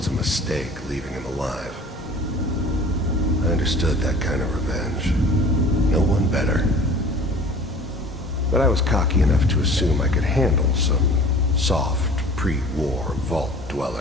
a mistake leaving him alive. I understood that kind of revenge. No one better. But I was cocky enough to assume I could handle some soft, pre-war vault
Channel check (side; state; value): both; normal; correlation 0.45